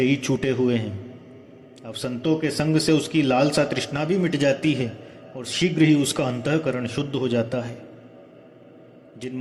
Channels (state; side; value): identical; both; correlation 1.00